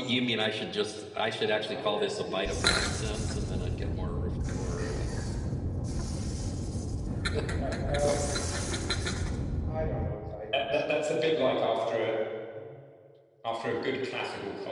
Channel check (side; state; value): both; identical; correlation 1.00